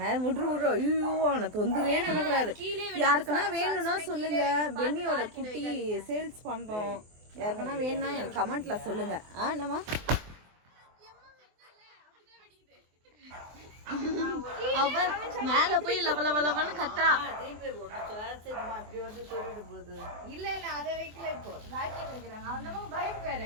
விட்ரு. ஐயோ, அவனை தொந்தரவே பண்ணக்கூடாது. யாருக்குன்னா வேணும்னா சொல்லுங்க. பென்னியோட குட்டி சேல்ஸ் பண்றோம். யாருக்குன்னா வேணும்னா எனக்கு கமெண்ட்ல சொல்லுங்க. என்னம்மா? அவ மேல போய் லவலவலவன்னு கத்துறா. இப்படி வந்து சொல்லிட்டு போகுது. இல்ல அத வைக்கல. இப்போ ராக்கெட் வைக்கிறாங்க. அந்த பைக் வேற.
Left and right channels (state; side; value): late; left; 24 ms